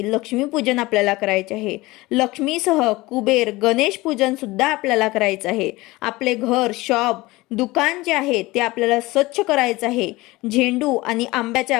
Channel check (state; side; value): quieter; right; 20.6 dB